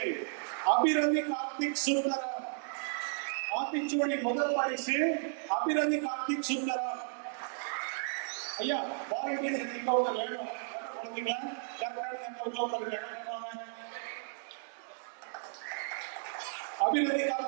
அபிரதி கார்த்திக் சுந்தரம். ஆத்திச்சூடி முதல் பரிசு அபிரதி கார்த்திக் சுந்தரம். ஐயா வாலண்டியர்ஸ் நீங்க ஒரு வேணும் குழந்தைங்களா அபிரதி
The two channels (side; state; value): left; silent; digital silence